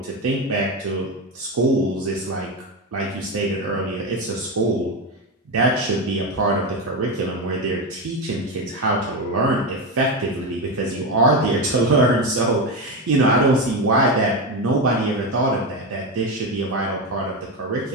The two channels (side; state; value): both; normal; correlation 0.15